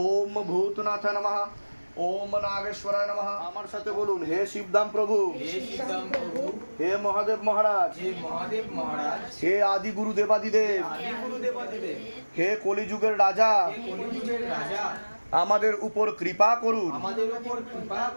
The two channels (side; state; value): both; inverted; correlation -1.00